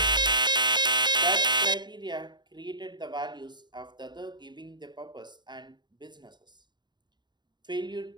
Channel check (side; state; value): left; late; 0.21 ms